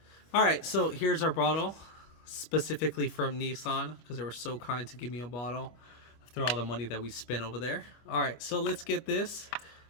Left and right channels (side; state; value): right; late; 25 ms